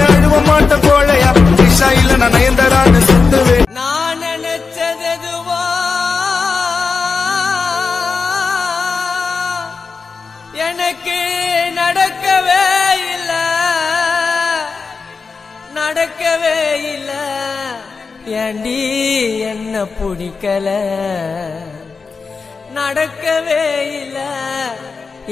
அழுவ மாட்ட கோழையா விஷா இல்ல நான் நயன்தரான்னு சுத்துவேன் நான் நினைச்சது எதுவோ எனக்கு நடக்கவே இல்ல ஏண்டி என்ன பிடிக்கல நடக்கவே இல்ல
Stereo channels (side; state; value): right; quieter; 4.8 dB